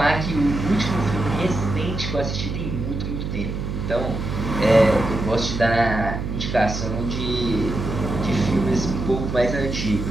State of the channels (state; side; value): noise; right; hum, 4 dB below the sound